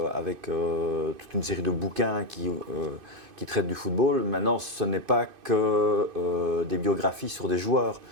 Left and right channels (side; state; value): left; late; 2.5 ms